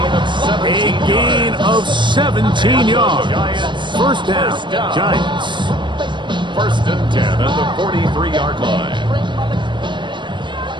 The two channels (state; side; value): late; left; 0.23 ms